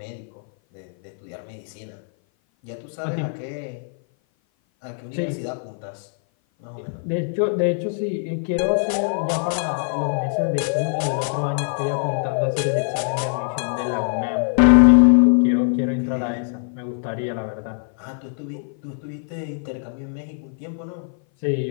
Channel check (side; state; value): right; silent; 57 dB below the other